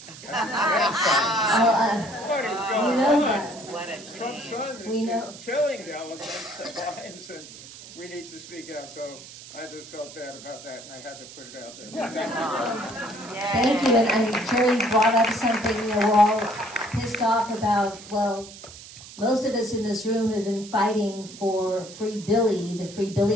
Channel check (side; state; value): right; noise; hiss, 16 dB below the sound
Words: What is You going know on? that. What a Trump's shame. son We know. is killing the elephants, the lions, and we need to speak out. So I just felt bad about that, and I had to put it out there. Thank you, and Jerry brought up something, we're all pissed off about, well, most of us in this room have been fighting for Free Billy, the Free